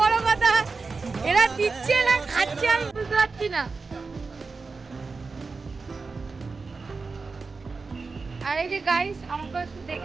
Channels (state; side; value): quieter; left; 4.3 dB